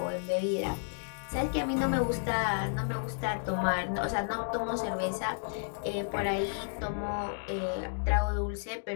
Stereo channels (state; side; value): silent; right; digital silence